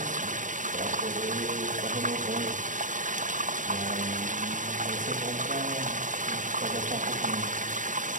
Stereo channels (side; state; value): left; late; 0.37 ms